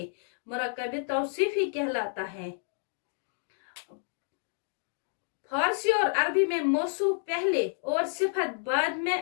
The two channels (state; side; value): silent; right; digital silence